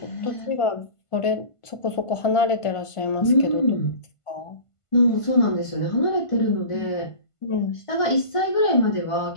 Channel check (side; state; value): right; late; 1.5 ms